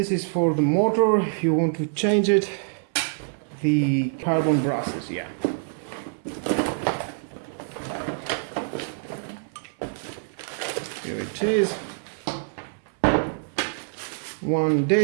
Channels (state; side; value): silent; left; 60 dB below the other